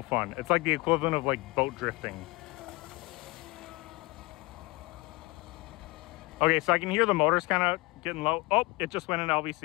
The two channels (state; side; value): quieter; right; 23.7 dB